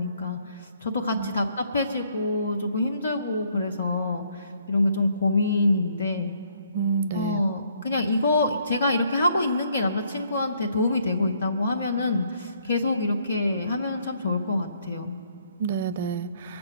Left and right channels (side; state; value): both; inverted; correlation -0.67